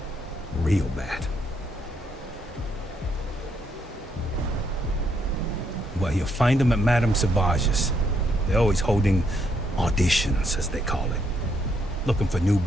Real bad. Well, you'll find them at Madame Sauvage's. They're always holding auditions, as they call it. Looking for new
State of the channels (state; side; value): normal; both; correlation 0.74